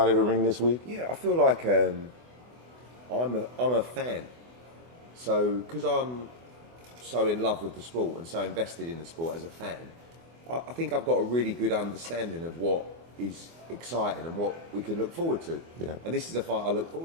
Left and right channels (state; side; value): late; left; 24 ms